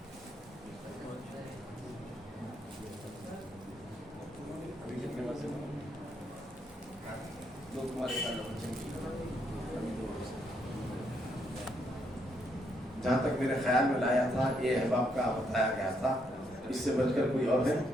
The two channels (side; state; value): both; normal; correlation 0.75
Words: जहाँ तक मेरे ख्याल में लाया था ये अहबाब का बताया गया था, इससे बचकर कोई और है